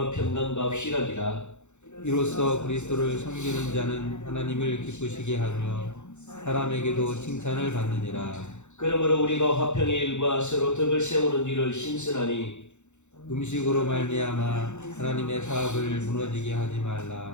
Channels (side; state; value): right; late; 0.83 ms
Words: 평강과 희락이라. 이로써 그리스도를 섬기는 자는 하나님을 기쁘시게 하며 사람에게도 칭찬을 받느니라. 그러므로 우리가 화평의 일과 서로 덕을 세우는 일을 힘쓰나니 음식으로 말미암아 하나님의 사업을 무너지게 하지